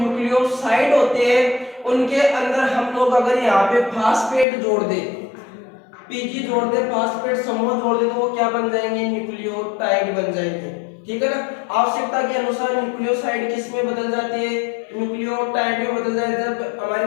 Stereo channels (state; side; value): drops out; right; at 4.5 s